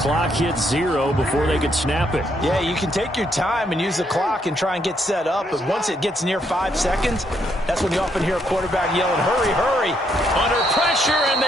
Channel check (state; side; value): normal; both; correlation 0.74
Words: hits 0 before they could snap it. Yeah, you can take your time and use the clock and try and get set up, but once it gets near 5 seconds, that's when you often hear a quarterback yelling, hurry, hurry. Under pressure, and